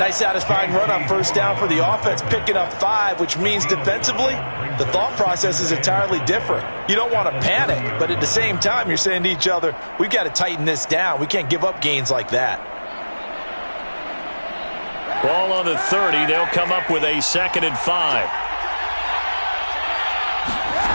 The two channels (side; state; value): both; inverted; correlation -1.00